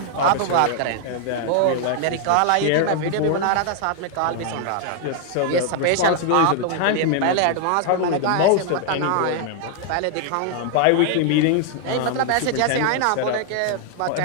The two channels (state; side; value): different; both; correlation 0.00